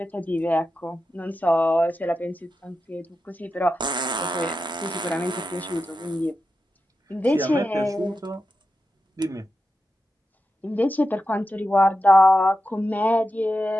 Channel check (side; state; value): both; normal; correlation 0.90